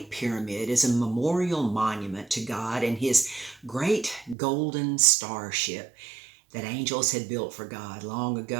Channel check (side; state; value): left; drops out; at 4.4 s